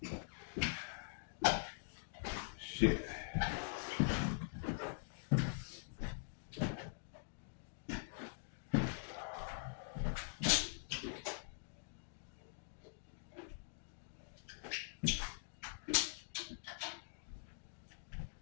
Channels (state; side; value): silent; right; digital silence